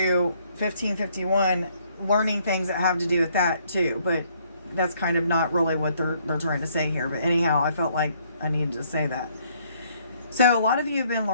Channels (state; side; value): inverted; both; correlation -0.66